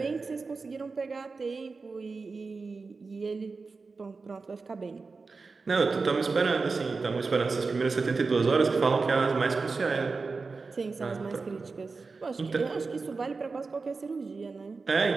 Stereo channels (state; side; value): quieter; left; 4.3 dB